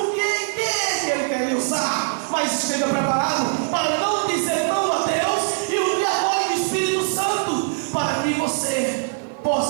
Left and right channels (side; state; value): left; silent; 64 dB below the other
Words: que Ele quer lhe usar. Mas esteja preparado para não dizer não a Deus e o apoio do Espírito Santo, para que você